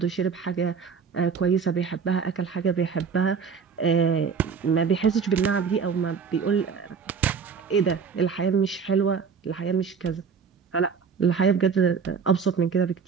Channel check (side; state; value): left; quieter; 6.0 dB